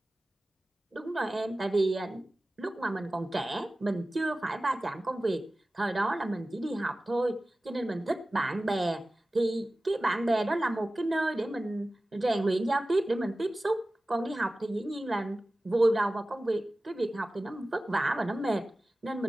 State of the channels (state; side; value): normal; both; correlation 0.96